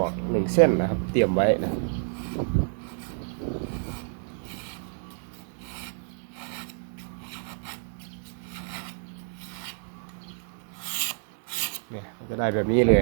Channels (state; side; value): silent; left; digital silence